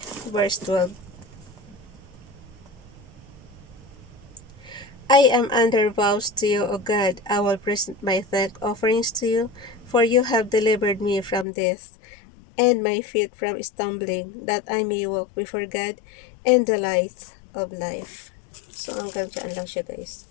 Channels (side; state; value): right; drops out; at 11.5 s